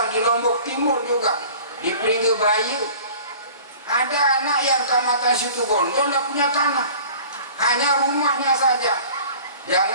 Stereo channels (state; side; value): inverted; both; correlation -0.45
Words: di Lombok Timur juga, di Pringge Bayu, ada anak yang Kecamatan Situbondo tidak punya tanah, hanya rumahnya saja.